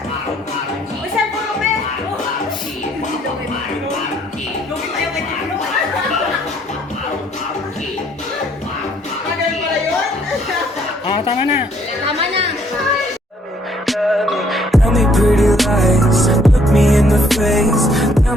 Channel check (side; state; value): both; normal; correlation 0.65